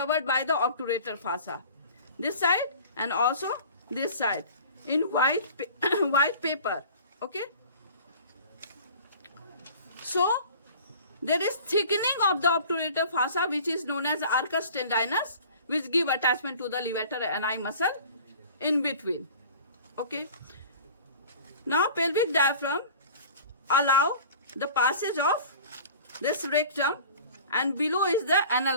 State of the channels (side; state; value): both; inverted; correlation -0.44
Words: by the obturator fossa. This side and also this side in white paper. Okay, so there is thickening of the obturator fossa, which is known as arcus tendinus, which give attachment to the levator ani muscle in between. Okay, now pelvic diaphragm allow the passage of this rectum, and below is the